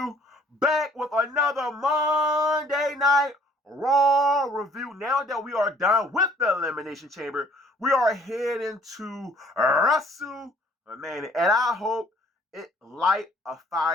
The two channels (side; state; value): both; normal; correlation 0.58